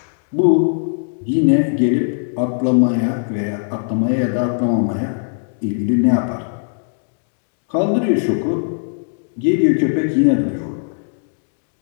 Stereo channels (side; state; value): right; silent; digital silence